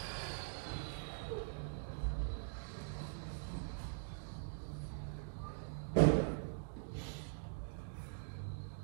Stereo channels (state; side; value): silent; left; digital silence